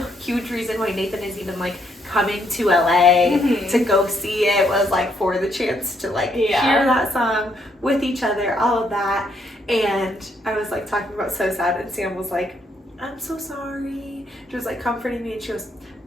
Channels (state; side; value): normal; both; correlation 0.72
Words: huge reason why Nathan is even, like, coming to LA to go see it, was, like, for the chance to, like, hear that song with each other, all of that. And I was, like, talking about So Sad, and Sam was like, I'm so sorry. She was, like, comforting me, and she goes,